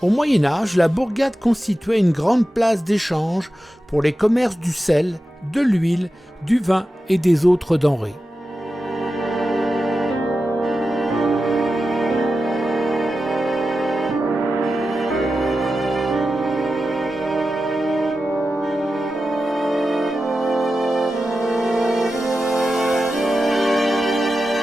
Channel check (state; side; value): normal; both; correlation 0.92